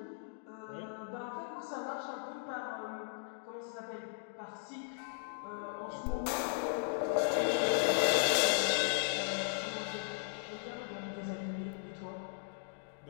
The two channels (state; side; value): silent; right; digital silence